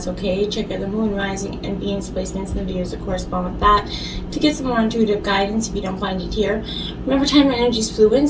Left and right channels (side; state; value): both; identical; correlation 1.00